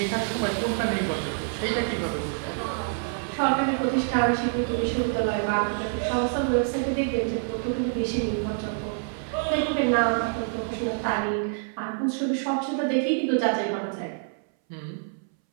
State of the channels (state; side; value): silent; left; 60 dB below the other